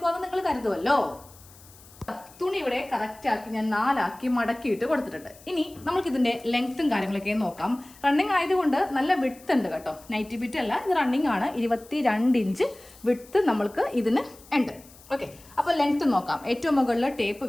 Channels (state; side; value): noise; left; hiss, 23 dB below the sound